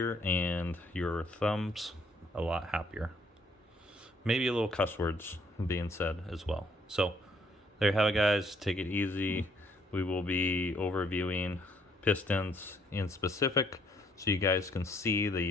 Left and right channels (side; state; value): both; normal; correlation 0.66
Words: and your thumbs a lot happier. Maybe a little cuss words being said as well. So there you have it, guys. Take it easy. We will be overviewing pistons in specific, so you guys can see